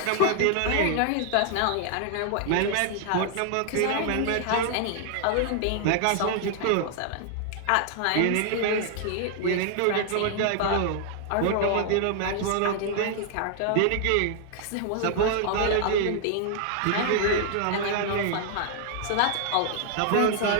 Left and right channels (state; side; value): different; both; correlation 0.00